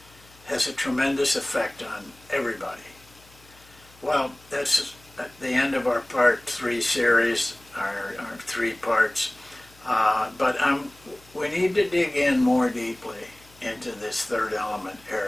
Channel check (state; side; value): noise; left; hum, 27 dB below the sound